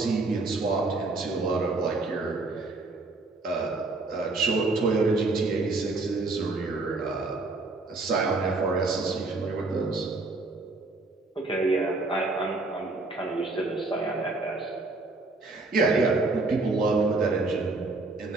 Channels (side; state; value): left; quieter; 3.3 dB